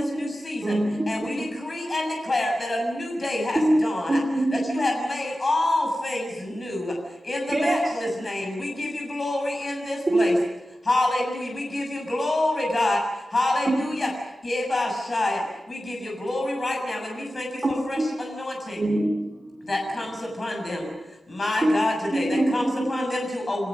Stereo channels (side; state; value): both; normal; correlation 0.93